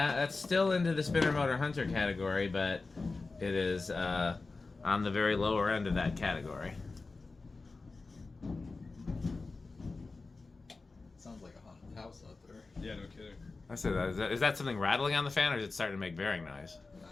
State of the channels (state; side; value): quieter; right; 3.8 dB